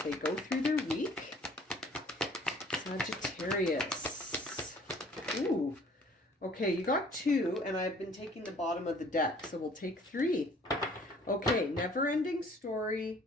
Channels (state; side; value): normal; both; correlation 0.55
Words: go through their week? Sagittarius. Ooh. Okay, you got 2, and I've been taking the bottom of the deck, so we'll take 3. Okay, never-ending story,